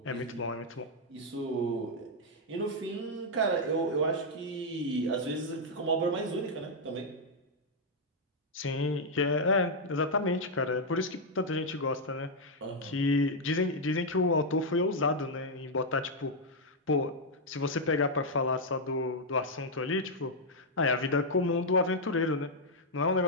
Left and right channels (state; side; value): normal; both; correlation -0.02